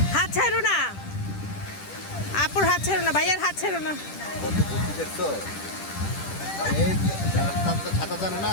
হাত ছাড়ো না, আপুর হাত ছাড়ো না, ভাইয়ার হাত ছাড়ো না। ছাতা জানে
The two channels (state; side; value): late; right; 10 ms